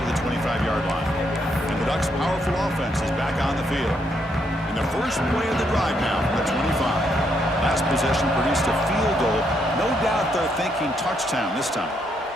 the 25-yard line. And the Ducks' powerful offense is back on the field. In the first play of the drive now from the 25. Last possession produced a field goal. No doubt they're thinking touchdown this time.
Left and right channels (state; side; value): normal; both; correlation 0.76